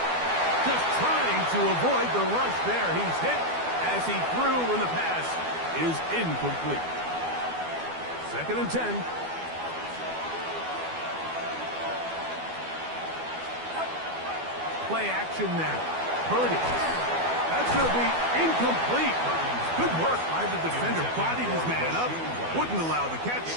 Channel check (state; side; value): late; left; 12 ms